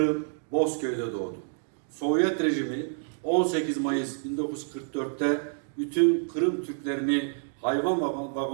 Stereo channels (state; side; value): silent; left; digital silence